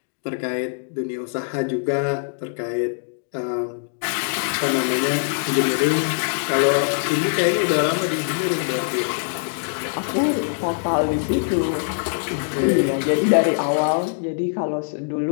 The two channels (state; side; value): silent; right; digital silence